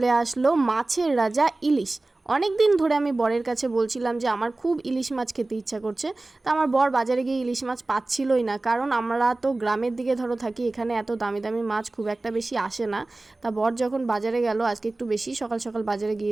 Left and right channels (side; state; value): left; quieter; 3.0 dB